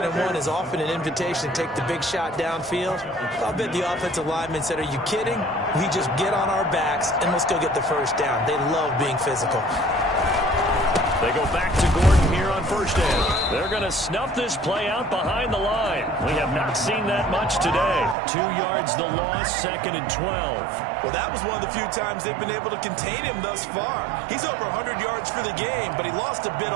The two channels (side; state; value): left; drops out; at 18.2 s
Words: and 1 is often an invitation to take the big shot downfield. I'll bet the offensive lineman said, are you kidding? We just get on our backs and let's go get the first down. They love being physical. They go back to Gordon here on first down. They're going to snuff this play out behind the line. We have not seen that much today. 2 yards the loss, 2nd and 12. Well, that was one of the few times they've been able to contain him thus far. He's over 100 yards for the game, but he lost a bit